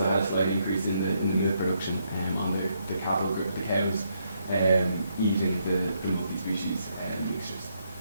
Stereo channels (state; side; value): inverted; both; correlation -0.76